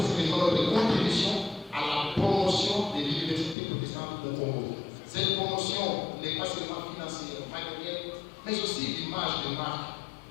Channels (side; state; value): right; drops out; at 3.6 s